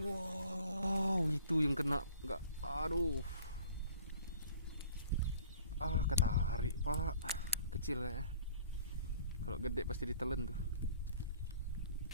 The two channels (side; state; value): both; inverted; correlation -0.52